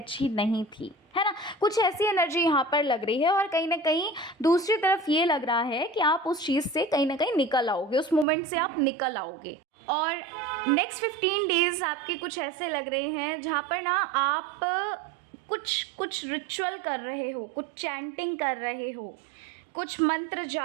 नहीं थी, है ना। कुछ ऐसी एनर्जी यहाँ पर लग रही है। और कहीं ना कहीं दूसरी तरफ ये लग रहा है कि आप उस चीज़ से कहीं ना कहीं निकल आओगे, उस मोमेंट से आप निकल आओगे। और नेक्स्ट 15 डेज़ आपके कुछ ऐसे लग रहे हैं जहाँ पर ना आप कुछ रिचुअल कर रहे हो, कुछ चैंटिंग कर रहे हो, कुछ मंत्र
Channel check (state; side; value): drops out; left; at 8.2 s